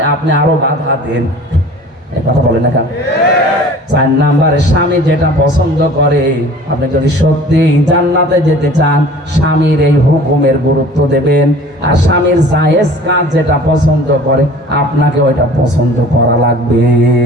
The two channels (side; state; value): both; normal; correlation 0.46